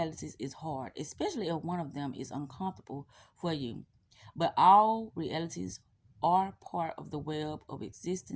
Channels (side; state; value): both; identical; correlation 1.00